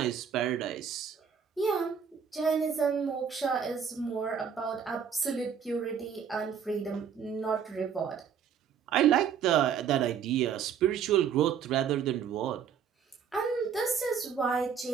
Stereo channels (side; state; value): left; quieter; 7.4 dB